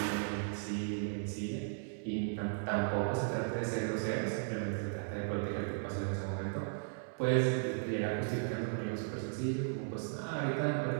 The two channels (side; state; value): left; silent; digital silence